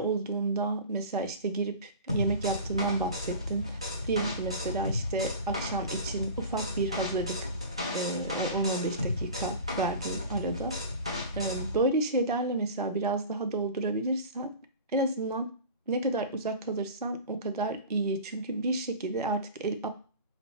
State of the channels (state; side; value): inverted; both; correlation -0.35